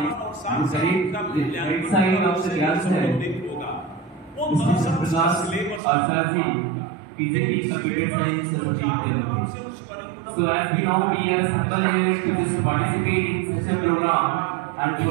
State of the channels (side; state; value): left; drops out; at 5.8 s